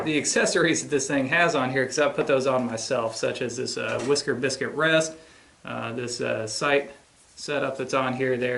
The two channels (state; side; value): identical; both; correlation 1.00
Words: accessories that this thing has on here because I put those on myself, such as this whisker biscuit rest, this sight setup that's on here